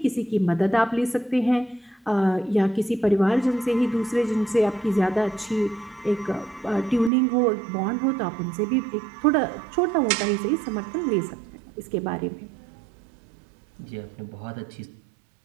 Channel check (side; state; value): left; drops out; at 7.1 s